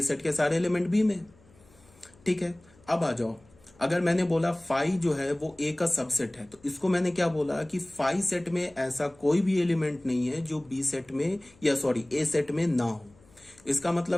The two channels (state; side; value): noise; left; hum, 29 dB below the sound